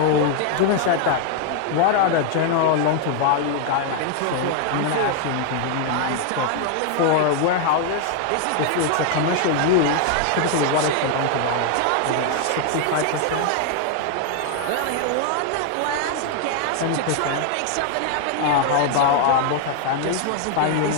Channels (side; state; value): both; different; correlation 0.00